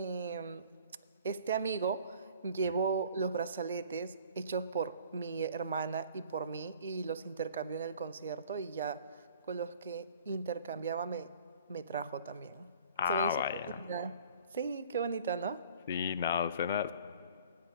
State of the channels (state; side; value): inverted; both; correlation -0.51